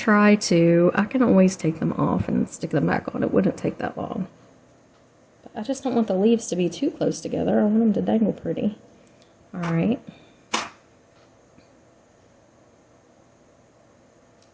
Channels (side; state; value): both; identical; correlation 1.00